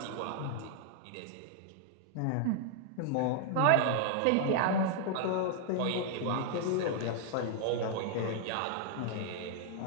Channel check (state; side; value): different; both; correlation 0.00